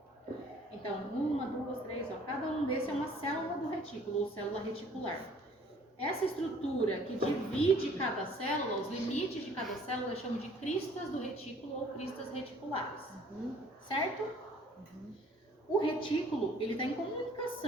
Então, 1, 2, 3, ó, cada um desses é uma célula do retículo, ou célula reticular. Essa estrutura que divide cada célula, os limites de cada célula, eu chamo de cristas do retículo ou cristas reticulares. Certo? O retículo, ele está em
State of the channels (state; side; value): normal; both; correlation 0.56